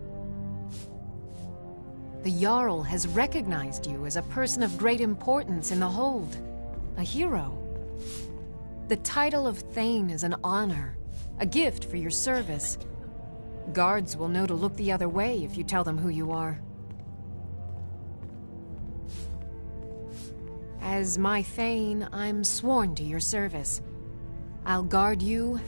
The Jarl has recognized you as a person of great importance in the Hold. A hero. The title of Thane is an honor, a gift for your service. Guards will know to look the other way if you tell them who you are. As my Thane, I'm sworn to your service. I'll guard you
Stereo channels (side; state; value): both; inverted; correlation -1.00